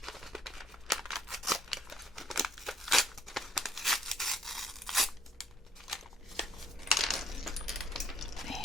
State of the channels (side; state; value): both; normal; correlation 0.64